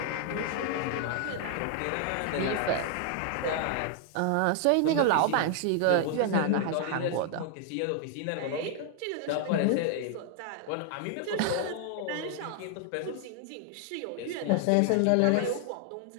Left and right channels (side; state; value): both; different; correlation 0.00